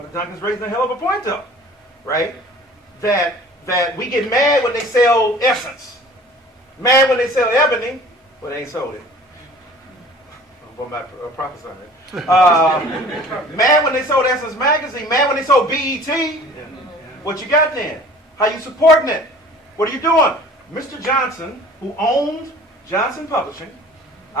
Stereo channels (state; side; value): normal; both; correlation 0.47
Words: Duncan's raising a hell of a point up, right? That we get mad when they sell Essence. Mad when they sell Ebony, but they ain't sold it. I'm not prophesying it. Mad when they sold Essence Magazine. Mad when they sold BET. What you got then? How you supporting it? What are you doing? Mr. Johnson, who owned Johnson Publishing,